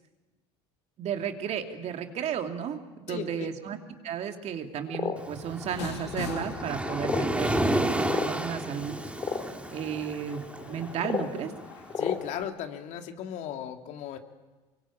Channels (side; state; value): both; normal; correlation 0.54